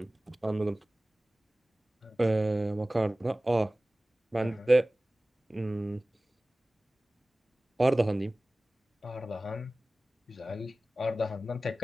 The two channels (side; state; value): both; normal; correlation 0.97